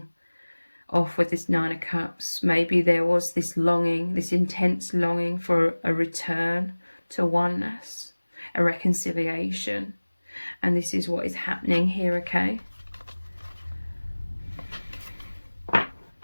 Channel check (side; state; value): both; inverted; correlation -1.00